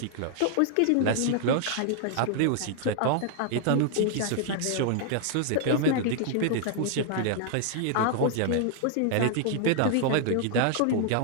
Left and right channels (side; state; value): both; different; correlation 0.00